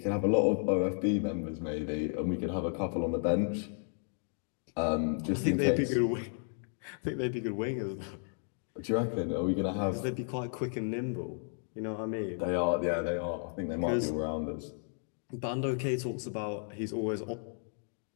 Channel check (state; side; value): silent; right; 56 dB below the other